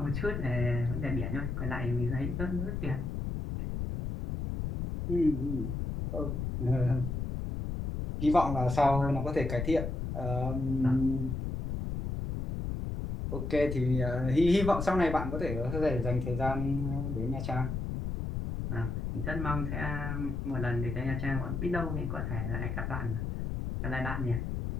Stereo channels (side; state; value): left; noise; rumble, 3 dB below the sound